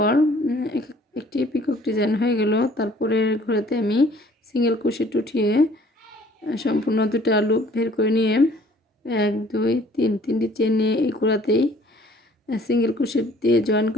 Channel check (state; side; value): normal; both; correlation 0.56